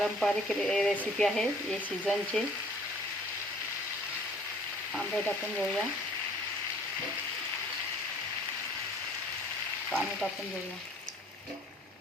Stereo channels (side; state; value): both; normal; correlation 0.54